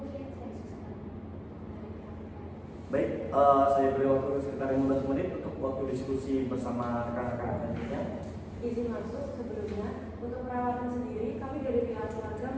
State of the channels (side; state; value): both; identical; correlation 1.00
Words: Baik, saya beri waktu sekitar 15 menit untuk waktu diskusi bersama rekan-rekan selanjutnya. Izin masuk sebelumnya, untuk perawatan sendiri kami dari pihak keluarga